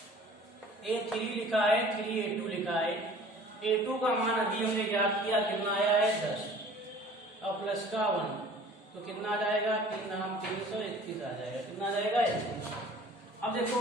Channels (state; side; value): normal; both; correlation 0.48